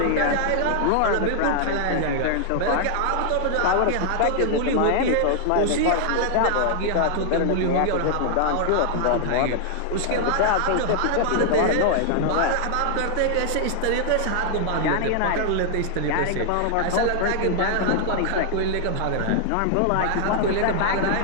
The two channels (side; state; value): both; different; correlation 0.00